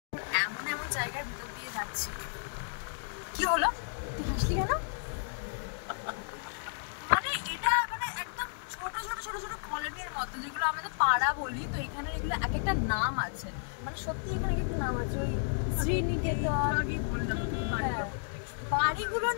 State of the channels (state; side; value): silent; right; digital silence